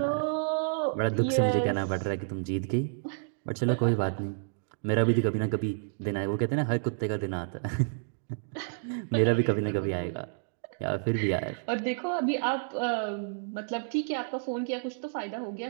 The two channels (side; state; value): left; silent; digital silence